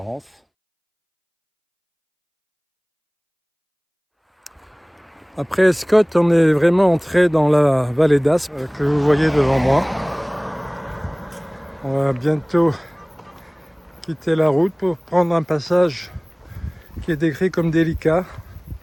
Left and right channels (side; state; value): both; identical; correlation 1.00